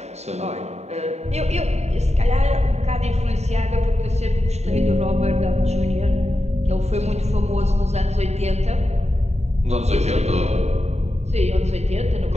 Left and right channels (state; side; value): late; left; 0.32 ms